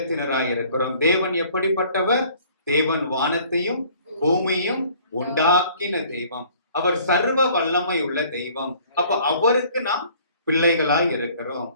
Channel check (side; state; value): both; inverted; correlation -0.55